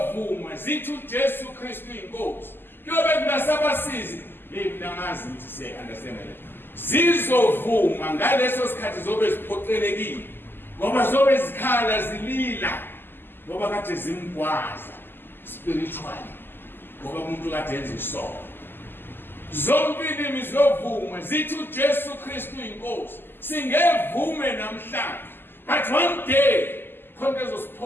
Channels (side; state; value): right; late; 0.098 ms